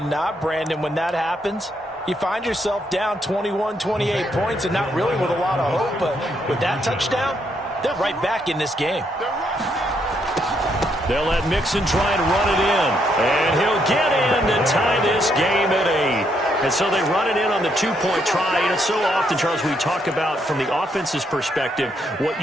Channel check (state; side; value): normal; both; correlation 0.75